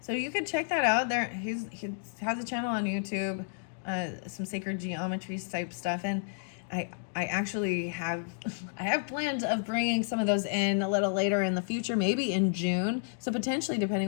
so you could check that out. He has a channel on YouTube, some sacred geometry type stuff, and I actually have plans of bringing some of those in a little later in the future, maybe in June. So potentially, depending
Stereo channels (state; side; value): silent; right; digital silence